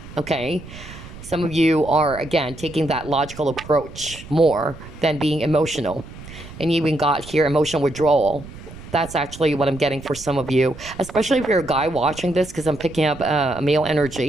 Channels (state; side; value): noise; right; rumble, 16 dB below the sound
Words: okay? Some of you are, again, taking that logical approach more than being emotional. And you even got here emotional withdrawal. That's actually what I'm getting for some of you, especially if you're a guy watching this, because I'm picking up a male